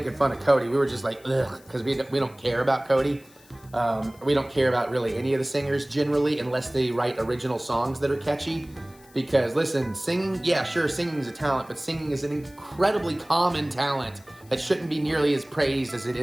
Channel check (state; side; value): noise; left; hiss, 27 dB below the sound